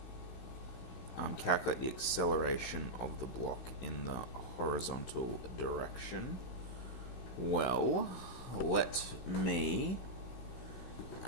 Calculate the acceleration of the block in the horizontal direction. Well, let me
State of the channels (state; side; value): late; right; 16 ms